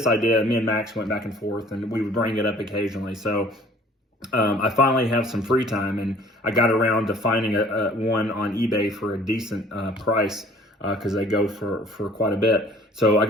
idea, me and Max went back and forth, and we would bring it up occasionally. So I finally have some free time, and I got around to finding one on eBay for a decent price, because they go for quite a bit. So I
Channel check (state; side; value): normal; both; correlation 0.53